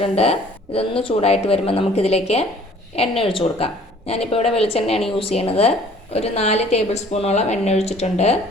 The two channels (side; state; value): both; normal; correlation 0.54